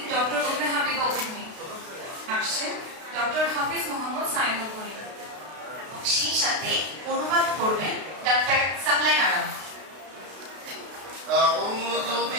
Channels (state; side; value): late; left; 32 ms